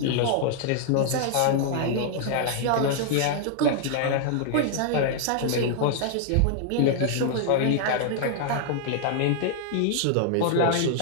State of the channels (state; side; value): different; both; correlation 0.00